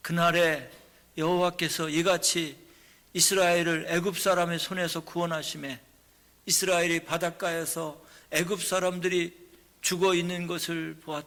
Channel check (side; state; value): both; identical; correlation 1.00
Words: 그날에 여호와께서 이같이 이스라엘을 애굽 사람의 손에서 구원하심에 이스라엘이 바닷가에서 애굽 사람들이 죽어 있는 것을